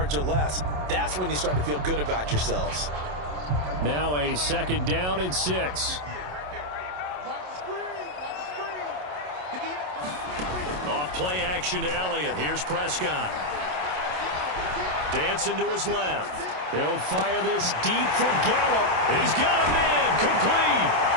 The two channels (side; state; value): left; late; 27 ms